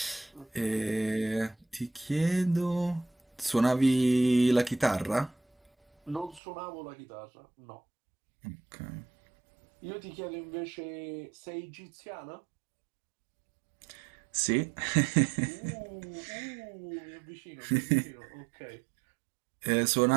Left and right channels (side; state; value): left; drops out; at 6.4 s